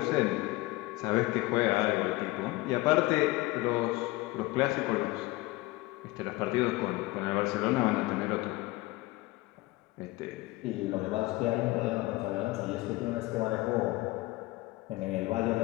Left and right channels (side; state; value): right; quieter; 20.4 dB